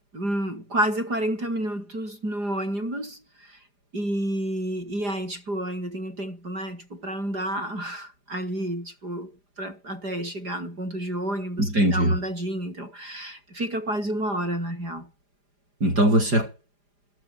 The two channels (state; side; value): late; left; 4.9 ms